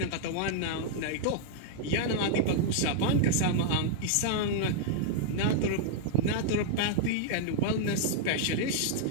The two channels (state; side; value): different; both; correlation -0.01